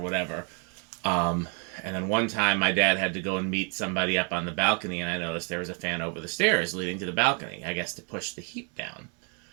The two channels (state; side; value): quieter; left; 38.2 dB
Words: Um, and then one time my dad had to go and meet somebody up on the balcony, and I noticed there was a fan over the stairs leading to the balcony, I guess to push the heat down.